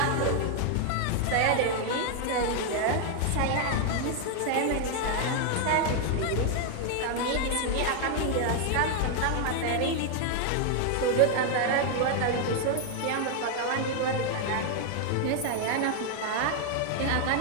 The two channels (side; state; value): both; different; correlation 0.00